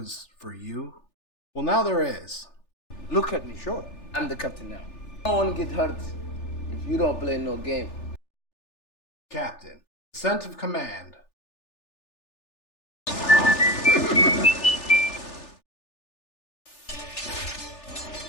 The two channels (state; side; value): late; right; 3.4 ms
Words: for you? Well, now there is. Look at me, sure. I'm the captain now. No one get hurt if you don't play no game. Captain. Ascent of command.